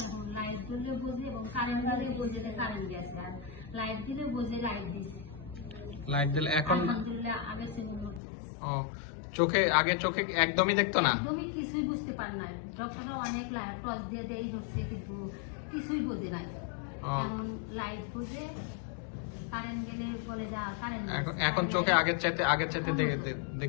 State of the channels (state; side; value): drops out; right; at 8.2 s